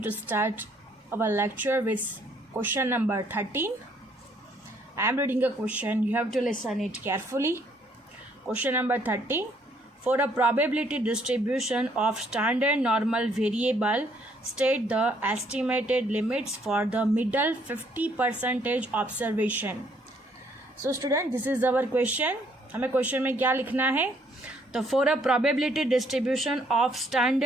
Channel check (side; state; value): both; normal; correlation 0.66